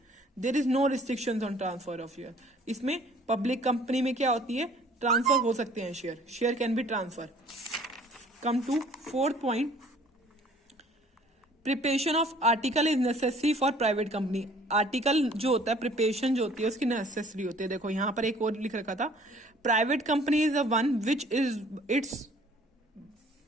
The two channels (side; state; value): both; normal; correlation 0.55